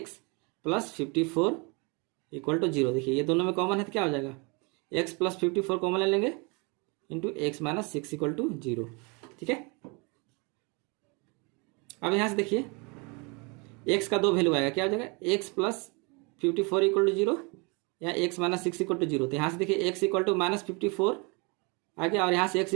प्लस 54 इक्वल टू 0। देखिए ये दोनों में कॉमन है तो क्या हो जाएगा एक्स प्लस 54 कॉमन ले लेंगे into x minus 6 equal to 0। ठीक है, अब यहाँ से देखिए एक्स का 2 वैल्यू आएगा, क्या हो जाएगा एक्स प्लस 54 इक्वल टू 0 या एक्स माइनस 6 इक्वल टू 0। तो यहाँ से देखिए एक्स इक्वल टू माइनस 54 आ गया और यहाँ से एक्स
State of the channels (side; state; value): left; quieter; 30.6 dB